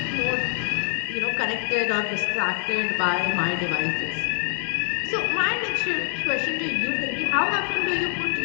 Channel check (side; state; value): right; silent; digital silence